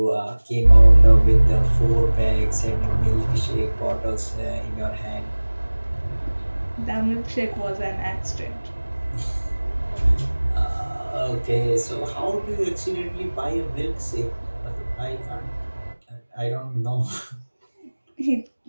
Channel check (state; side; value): inverted; both; correlation -1.00